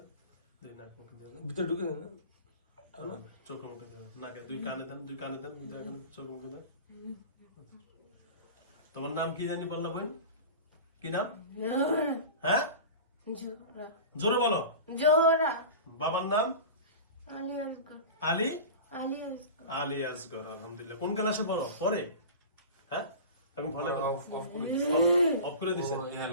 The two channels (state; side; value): inverted; both; correlation -0.32